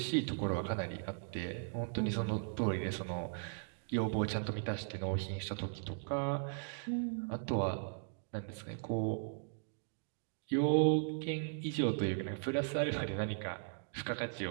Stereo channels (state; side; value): silent; left; digital silence